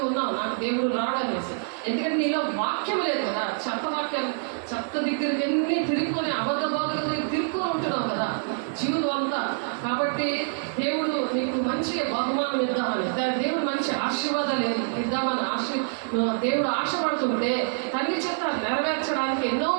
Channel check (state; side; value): silent; left; digital silence